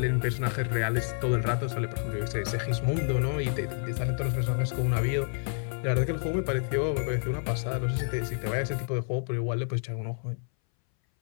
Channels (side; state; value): right; silent; 58 dB below the other